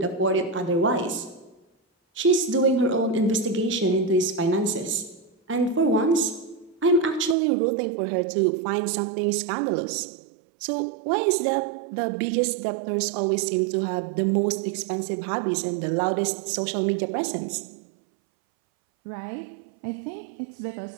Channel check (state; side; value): drops out; left; at 7.4 s